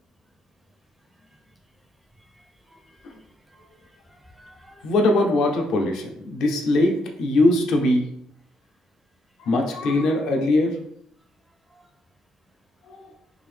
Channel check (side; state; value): both; normal; correlation 0.76